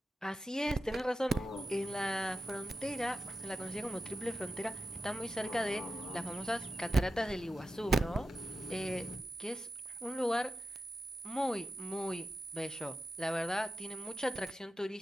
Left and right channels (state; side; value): normal; both; correlation 0.91